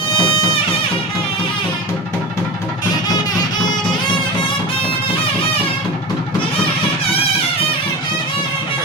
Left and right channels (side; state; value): both; normal; correlation 0.29